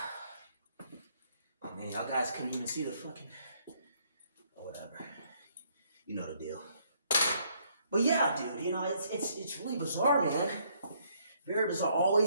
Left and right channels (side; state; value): both; inverted; correlation -0.68